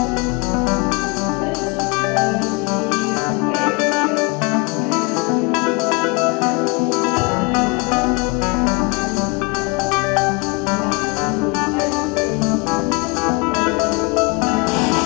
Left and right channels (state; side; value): quieter; right; 28.3 dB